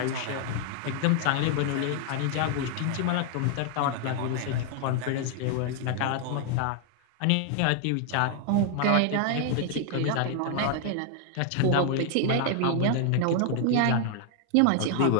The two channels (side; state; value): both; different; correlation 0.00